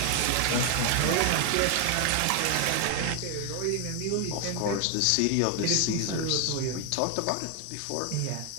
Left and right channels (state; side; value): different; both; correlation 0.00